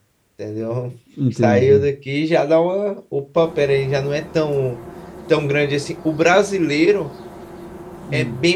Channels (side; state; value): both; identical; correlation 1.00